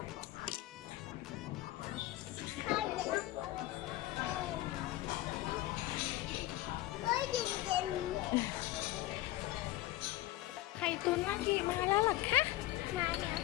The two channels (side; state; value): right; quieter; 16.6 dB